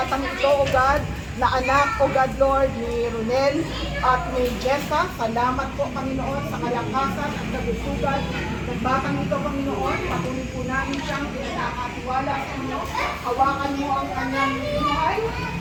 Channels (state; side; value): identical; both; correlation 1.00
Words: ito, O God, na anak, O God, Lord, ni Ronel at ni Jessa. Salamat po, Panginoon, sa kalakasan at kagusugan ng batang ito, Panginoon. Patuloy po namin siyang pinakatiwala sa inyo. Hawakan mo ang kanyang buhay,